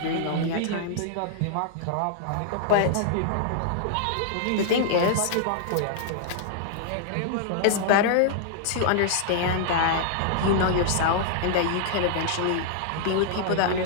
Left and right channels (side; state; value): both; different; correlation -0.01